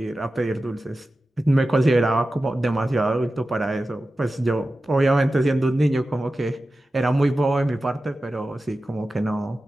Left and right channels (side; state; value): both; normal; correlation 0.94